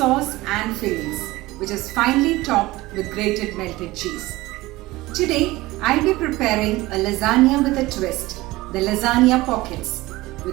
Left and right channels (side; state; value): left; quieter; 19.4 dB